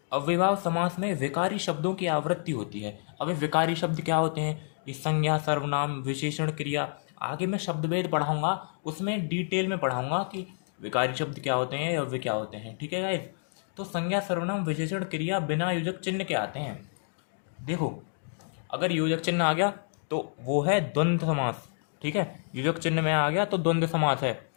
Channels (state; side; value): silent; right; digital silence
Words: अव्ययभाव समास में विकारी शब्दों की आवृत्ति होती है। अभी विकारी शब्द क्या होते हैं, ये संज्ञा, सर्वनाम, विशेषण, क्रिया, आगे मैं शब्दभेद पढ़ाऊंगा, उसमें डिटेल में पढ़ाऊंगा कि विकारी शब्द क्या होते हैं, अव्यय क्या होते हैं, ठीक है गाइस। तो संज्ञा, सर्वनाम, विशेषण, क्रिया बिना योजक चिन्ह के आते हैं। देखो अगर योजक चिन्ह आ गया तो वो है द्वंद्व समास, ठीक है, योजक चिन्ह में आ गया तो द्वंद्व समास है,